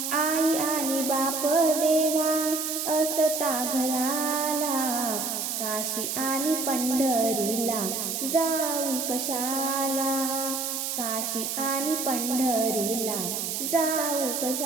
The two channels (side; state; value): right; noise; hiss, 2 dB below the sound